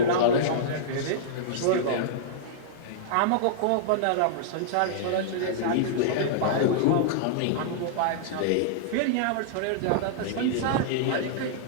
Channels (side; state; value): both; different; correlation -0.02